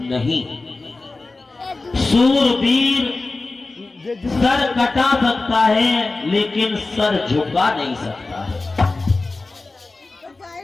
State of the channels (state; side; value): quieter; right; 3.4 dB